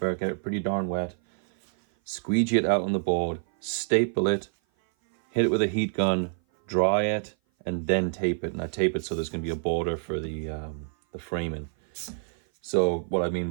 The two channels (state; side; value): silent; left; 56 dB below the other